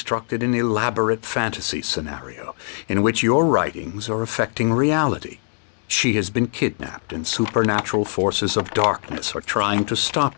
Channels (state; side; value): silent; right; digital silence